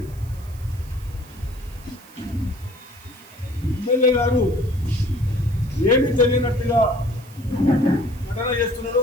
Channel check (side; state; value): right; noise; hiss, 24 dB below the sound